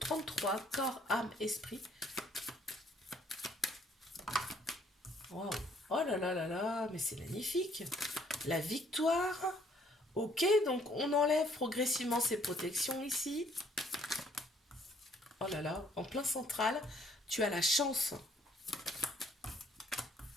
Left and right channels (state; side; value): normal; both; correlation 0.64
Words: corps, âme, esprit. Waouh! Oh là là là là, mais c'est magnifique! La victoire. Ok, donc on enlève progressivement ces protections ici. Oh là là, en plein central, tu as la chance.